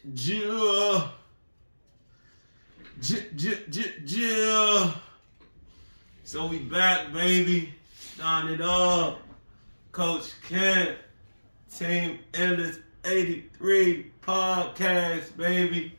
So we back, baby. Starting it off. Coach Ken, Teamendless83podcast, baby.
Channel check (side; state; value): both; inverted; correlation -1.00